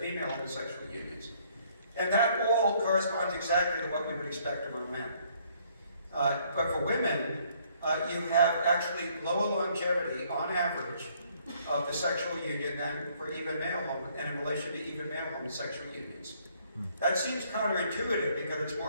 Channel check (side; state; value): both; inverted; correlation -0.65